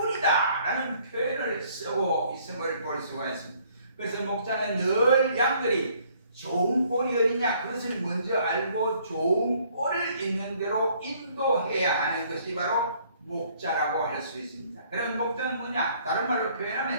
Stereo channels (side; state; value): both; inverted; correlation -0.62